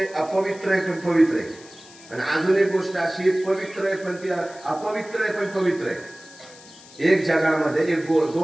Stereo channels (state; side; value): noise; left; hiss, 21 dB below the sound